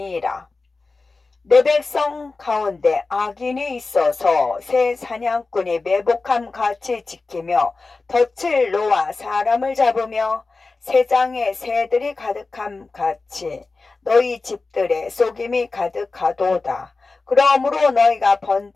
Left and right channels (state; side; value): quieter; right; 3.8 dB